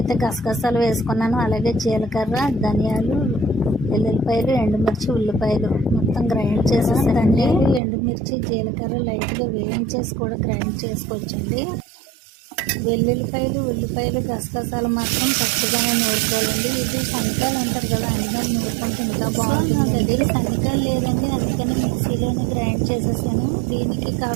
గసగసాలు వేసుకున్నాను, అలాగే జీలకర్ర, ధనియాలు, వెల్లుల్లిపాయలు, ఎండుమిర్చి, ఉల్లిపాయలు మొత్తం గ్రైండ్ చేసేసి, ధనియాలు, ఎండుమిర్చి, జీలకర్ర లైట్గా వేయించేసి కూడా గ్రైండ్ చేసుకోవచ్చండి. వెల్లుల్లిపాయలు, ఉల్లిపాయలు, గసగసాలు మాత్రం పచ్చిగానే నూరుకోవాలండి. ఇది శనగకాయలు అంటారు కదా, అందుకని నూరుకుంటే ఇంకా బాగుంటుంది. నా దగ్గర శనగకాయలు లేదండి, అందుకని మిక్సీలోనే గ్రైండ్ చేసేసాను. దీనికి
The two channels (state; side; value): drops out; left; at 7.8 s